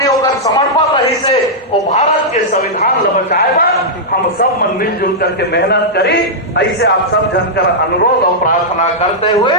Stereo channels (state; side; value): normal; both; correlation -0.09